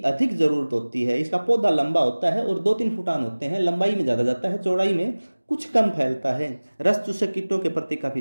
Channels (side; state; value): both; inverted; correlation -1.00